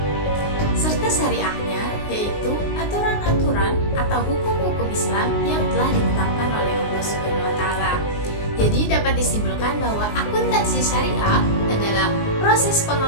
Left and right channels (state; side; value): late; right; 19 ms